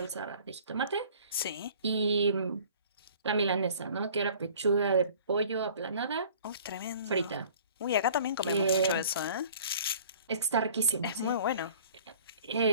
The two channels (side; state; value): both; inverted; correlation -0.49